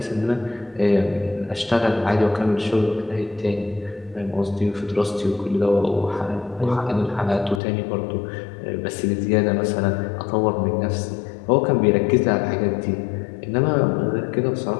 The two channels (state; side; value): drops out; right; at 7.6 s